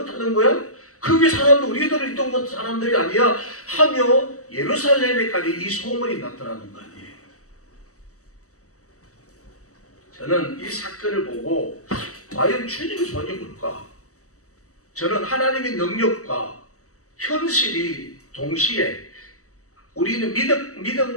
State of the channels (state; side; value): late; right; 0.66 ms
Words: 거야? 그게 사람들, 우리들 있던 것 사람들이 아니야 하며 예루살렘에까지 이 소문이 나타나는 거 아니에요. 저는 이 사건을 보고 과연 주님의 손이 뭘까? 저는 하나님의 능력과 현실이 동시에, 우리는